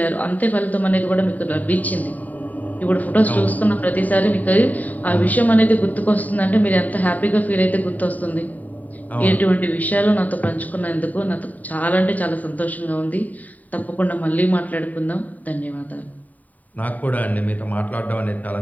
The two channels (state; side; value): late; right; 0.075 ms